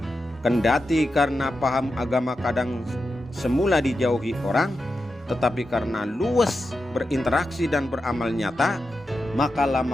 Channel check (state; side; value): normal; both; correlation 0.89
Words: Kendati karena paham agama kadang semula dijauhi orang, tetapi karena luas berinteraksi dan beramal nyata, maka